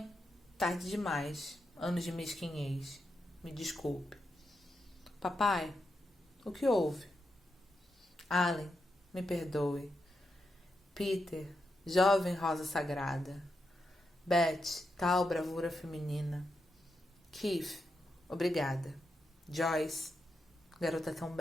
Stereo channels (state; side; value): normal; both; correlation 0.85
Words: tarde demais. Anos de mesquinhez. Me desculpe. Papai, o que houve? Allen, me perdoe. Peter, jovem rosa sagrada. Beth, tal bravura feminina. Keith, obrigada. Joyce, garota tão